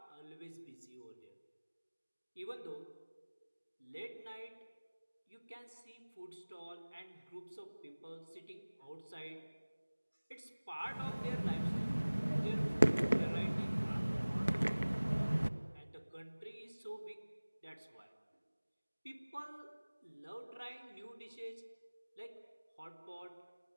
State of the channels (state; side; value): inverted; both; correlation -1.00